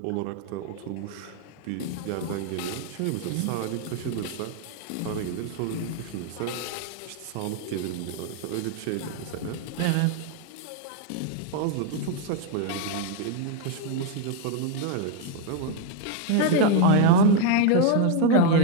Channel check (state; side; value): different; both; correlation 0.00